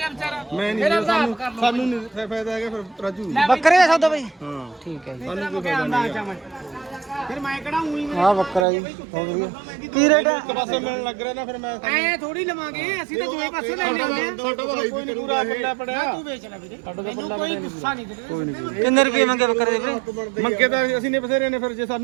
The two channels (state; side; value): drops out; left; at 8.7 s